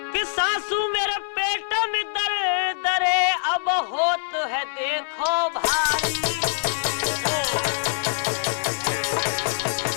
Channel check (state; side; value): silent; right; digital silence